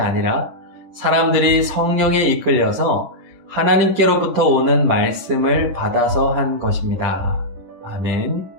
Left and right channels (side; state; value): left; late; 10 ms